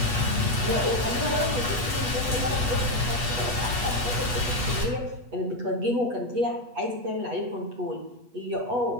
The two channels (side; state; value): left; late; 8.2 ms